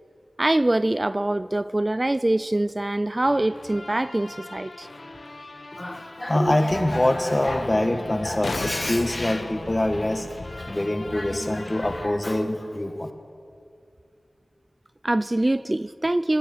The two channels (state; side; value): normal; both; correlation 0.98